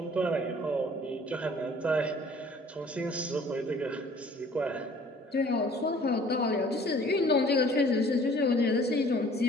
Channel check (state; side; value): normal; both; correlation 0.53